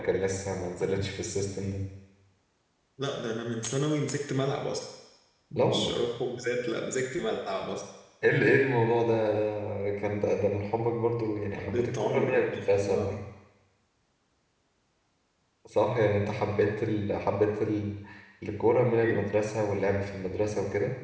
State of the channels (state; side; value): identical; both; correlation 1.00